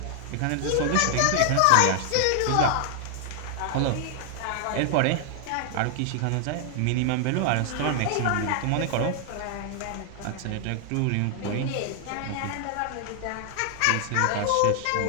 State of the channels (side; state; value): both; different; correlation 0.00